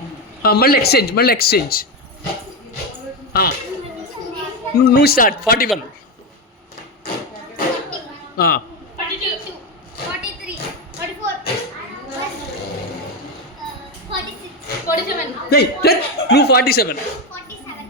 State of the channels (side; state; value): both; normal; correlation 0.11